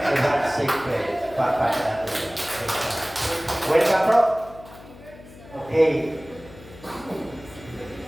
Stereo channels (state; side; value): noise; left; hum, 19 dB below the sound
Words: Secret, Papa nato. Welcome, bro. Okay.